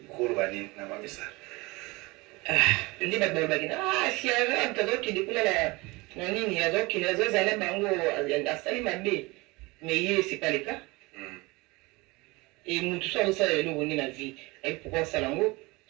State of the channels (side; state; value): left; quieter; 23.7 dB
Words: kurubani na Mamisa. Ndi babagina si ara mtazo kidikula na nini yazo kinazo zala bango asali mabe. Mais hier, c'est pas le cas. Et nous, tout ça, on sait le bonheur de la vie. Et pourquoi ça l'ango,